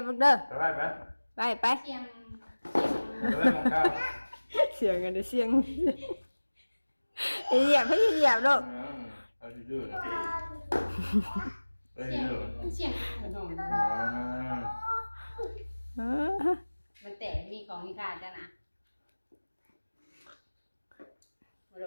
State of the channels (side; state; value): both; inverted; correlation -1.00